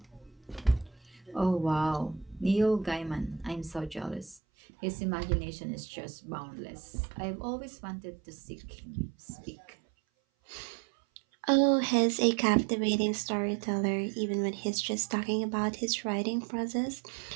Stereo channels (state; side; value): drops out; left; at 4.4 s